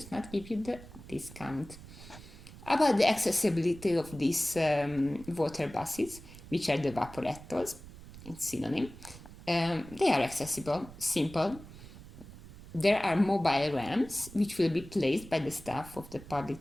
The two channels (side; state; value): right; noise; rumble, 16 dB below the sound